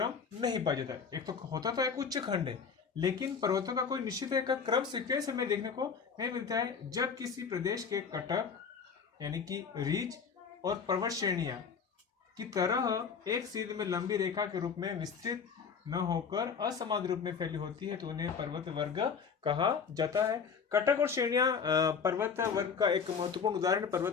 नहीं पाया जाता। एक तो होता तो एक उच्च खंड है, लेकिन पर्वतों का कोई निश्चित एक क्रम सीक्वेंस हमें देखने को नहीं मिलता है। जब किसी प्रदेश के कटक यानी कि रीज और पर्वत श्रेणियां की तरह एक सीध में लंबी रेखा के रूप में विस्तृत न होकर असमान रूप में फैली होती है, तो उन्हें पर्वत वर्ग कहा जाता है। कटक और श्रेणियां पर्वत वर्ग का एक महत्वपूर्ण उदाहरण।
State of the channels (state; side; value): quieter; right; 6.1 dB